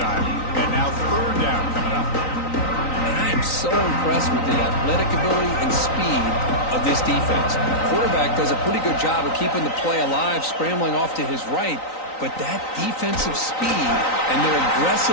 And now 3rd down coming up. And I am so impressed with the athletic ability and speed of this defense. Quarterback does a pretty good job of keeping the play alive, scrambling off to his right, but that defensive speed and their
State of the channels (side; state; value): right; late; 3.9 ms